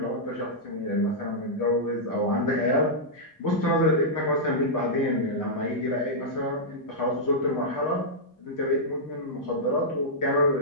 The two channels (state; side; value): normal; both; correlation -0.09